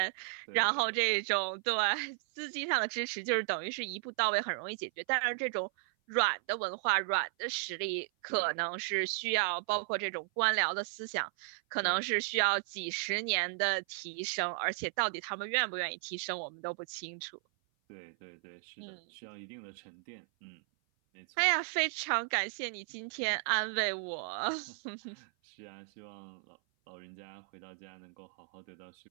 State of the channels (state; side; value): silent; left; 54 dB below the other